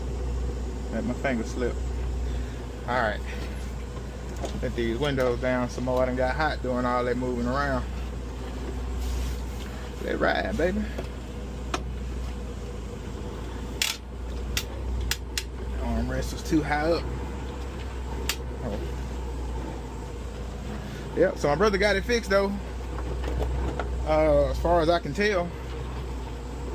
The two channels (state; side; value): identical; both; correlation 1.00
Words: Let my finger slip. Alright. Let these windows down some more. I done got hot doing all that moving around. Let it ride, baby. Armrest was too high up. Oh. Yep, so my brother got it fixed though. As far as I can tell,